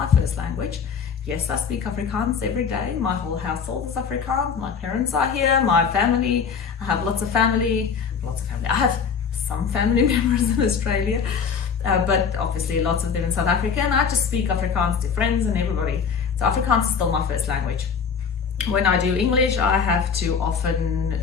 first language. Yes, I speak Afrikaans every day. My whole household is Afrikaans. My parents are here, my family. I have lots of family. I have some family members in Australia, but obviously lots of them in South Africa, and I just speak Afrikaans to friends and everybody. So Afrikaans is still my first language. When I do English, I have to often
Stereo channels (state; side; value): quieter; right; 6.3 dB